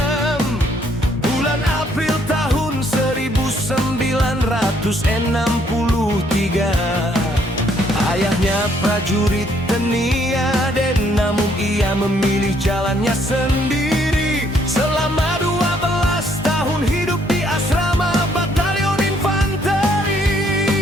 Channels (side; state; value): both; normal; correlation 0.68